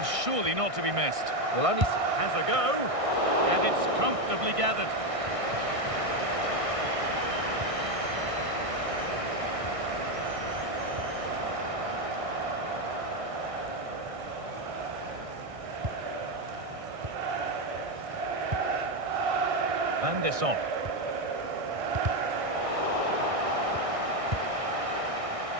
surely not to be missed. Well, only has a go, and it's comfortably gathered. Van der Son.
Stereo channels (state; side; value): late; left; 1.6 ms